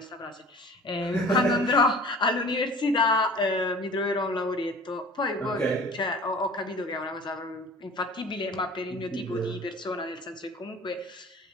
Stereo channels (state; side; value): normal; both; correlation 0.44